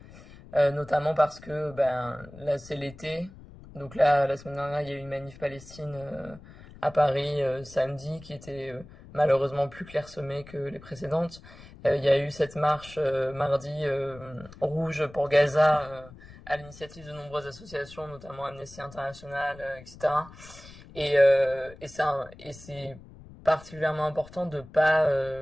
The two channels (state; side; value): noise; left; rumble, 19 dB below the sound